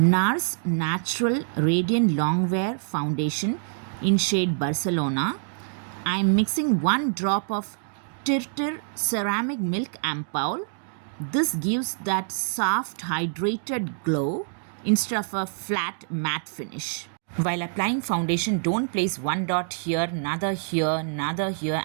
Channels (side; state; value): left; silent; digital silence